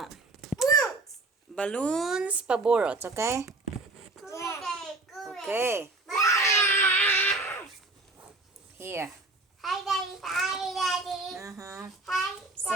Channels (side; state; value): left; quieter; 3.2 dB